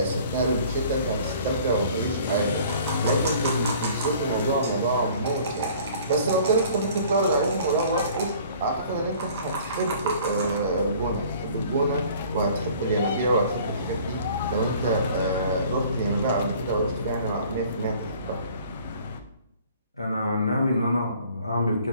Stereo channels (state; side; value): inverted; both; correlation -0.52